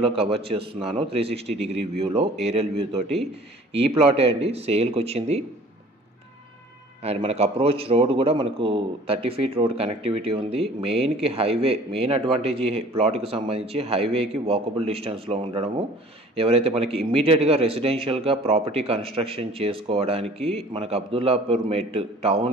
కవర్ చేస్తున్నాను, 360 డిగ్రీ వ్యూలో ఏరియల్ వ్యూ తోటి ఈ ప్లాటే అండి సేల్కి వచ్చింది. అండ్ మనకు అప్రోచ్ రోడ్ కూడా మనకు 30 ఫీట్ రోడ్ కనెక్టివిటీ ఉంది. మెయిన్కి హైవే, మెయిన్ అడ్వాంటేజ్ ఈ ప్లాట్కి సంబంధించి హైవేకి వాకబుల్ డిస్టెన్స్లో ఉండడము. ఎవరైతే మనకి ఇమ్మీడియట్గా రెసిడెన్షియల్గా ప్రాపర్టీ కన్స్ట్రక్షన్ చేసుకోవడానికి మనకు అబ్దుల్లాపూర్ మెట్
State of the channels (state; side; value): normal; both; correlation 0.49